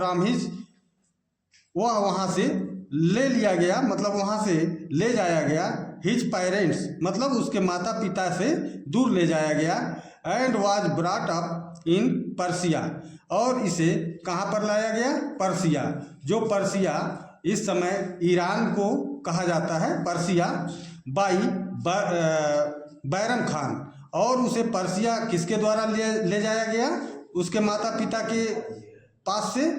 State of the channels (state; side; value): identical; both; correlation 1.00